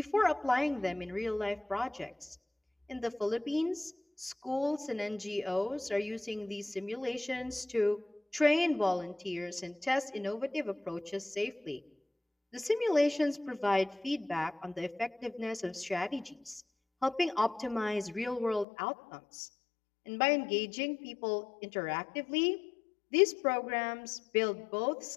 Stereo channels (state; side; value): drops out; right; at 18.7 s